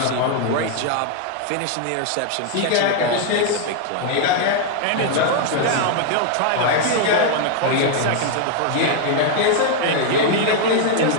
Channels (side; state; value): both; different; correlation 0.00